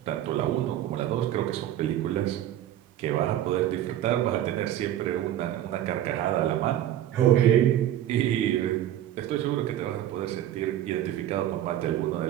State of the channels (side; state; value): left; quieter; 12.1 dB